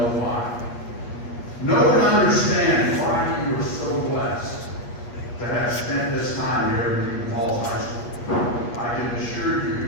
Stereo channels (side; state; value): right; late; 8.4 ms